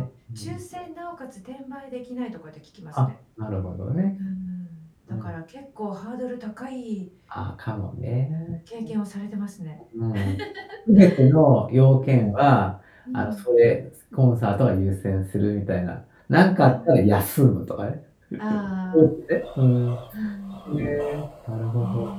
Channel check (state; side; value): identical; both; correlation 1.00